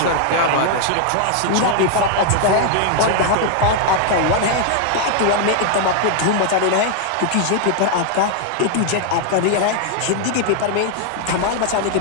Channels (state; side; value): different; both; correlation 0.00